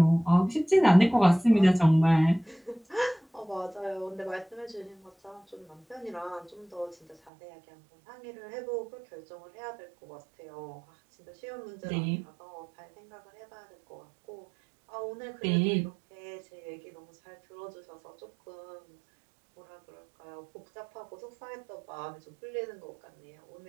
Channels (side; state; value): left; drops out; at 7.3 s